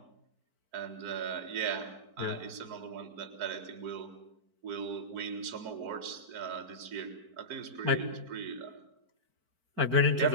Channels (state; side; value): late; left; 4.5 ms